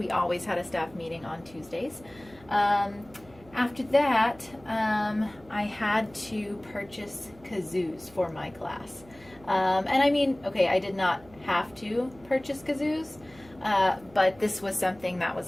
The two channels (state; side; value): noise; right; hum, 24 dB below the sound